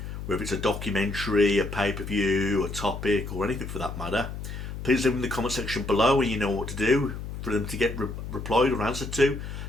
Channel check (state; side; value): noise; left; hum, 8 dB below the sound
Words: whether it's a documentary, a pay-per-view, a topic, or anything for that matter, please leave them in the comment section below and you know what to do for them to get replied or answered to.